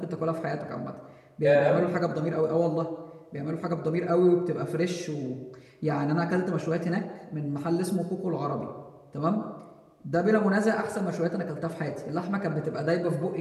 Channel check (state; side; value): identical; both; correlation 1.00